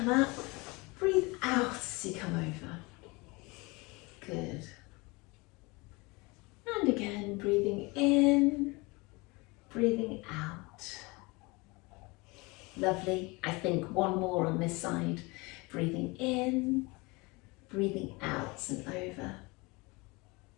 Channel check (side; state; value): right; quieter; 25.5 dB